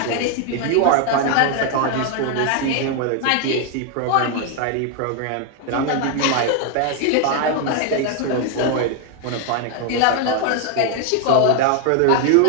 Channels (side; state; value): both; different; correlation 0.00